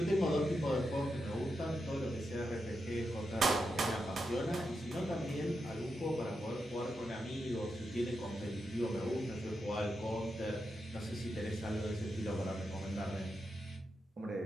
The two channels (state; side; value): normal; both; correlation 0.86